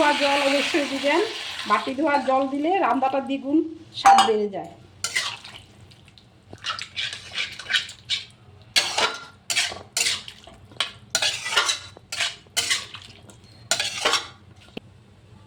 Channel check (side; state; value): both; identical; correlation 1.00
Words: জল অবশ্যই দিবেন। বাটি ধোয়া জল দিলে রান্নাটা দ্বিগুণ স্বাদ বেড়ে যায়।